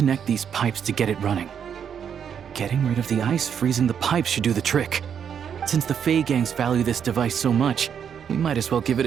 these pipes to get it running. Getting rid of the ice freezing the pipes should do the trick. Since the Fey gangs value this device so much, we might as well give it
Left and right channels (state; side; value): quieter; left; 8.0 dB